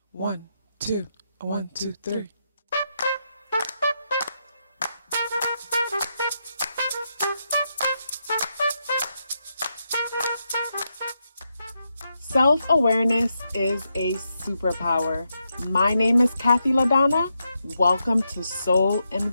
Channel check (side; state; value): both; inverted; correlation -0.83